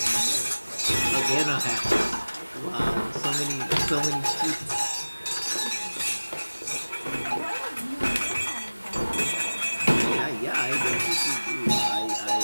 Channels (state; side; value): inverted; both; correlation -1.00